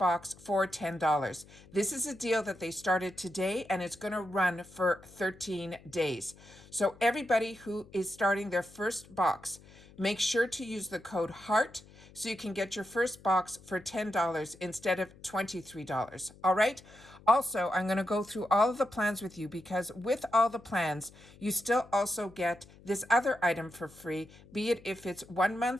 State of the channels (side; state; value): left; noise; hum, 23 dB below the sound